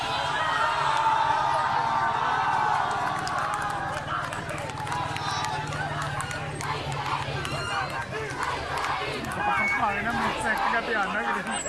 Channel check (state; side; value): identical; both; correlation 1.00